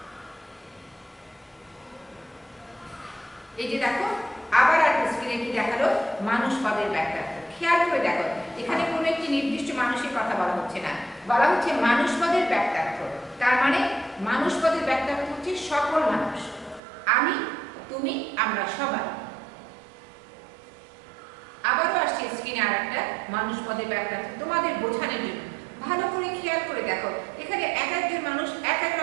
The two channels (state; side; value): drops out; left; at 16.8 s